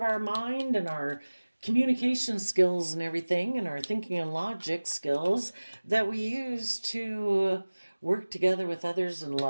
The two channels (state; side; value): inverted; both; correlation -1.00